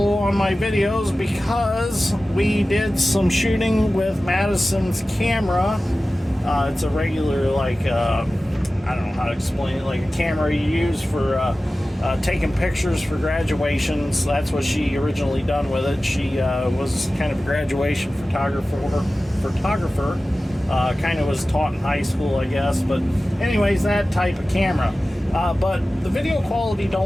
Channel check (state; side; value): normal; both; correlation 0.96